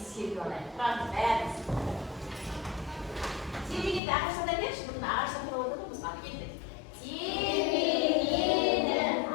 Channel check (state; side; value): drops out; right; at 4.0 s